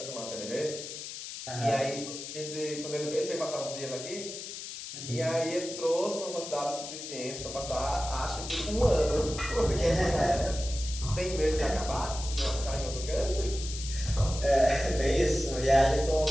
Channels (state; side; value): noise; left; hiss, 9 dB below the sound